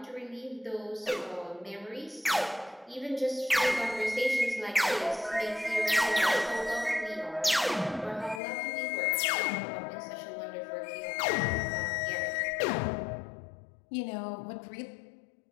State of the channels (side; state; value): right; drops out; at 8.4 s